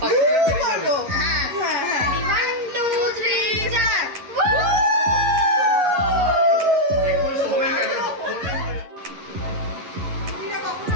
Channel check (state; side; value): late; left; 11 ms